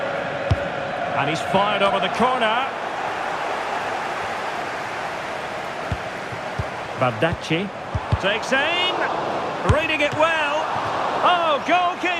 And he's fired over the corner. Bardacci. Takes aim, reading it well. Oh,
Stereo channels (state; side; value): identical; both; correlation 1.00